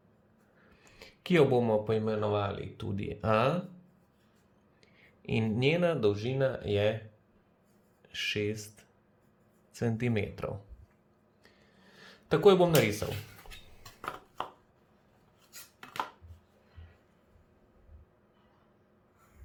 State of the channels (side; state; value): both; identical; correlation 1.00